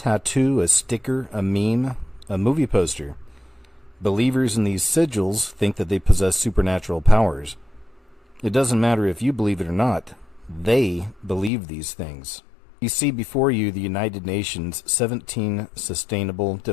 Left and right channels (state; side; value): drops out; right; at 11.5 s